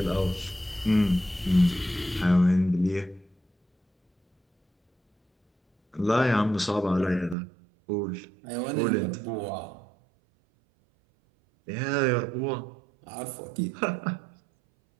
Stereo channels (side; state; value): left; drops out; at 7.4 s